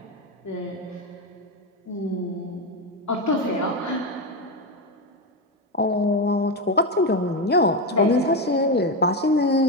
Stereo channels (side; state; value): both; normal; correlation 0.12